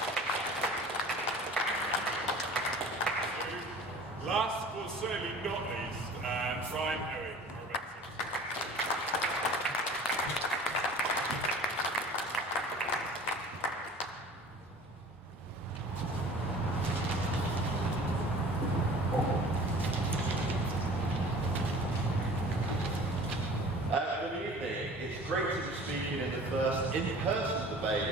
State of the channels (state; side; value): normal; both; correlation 0.44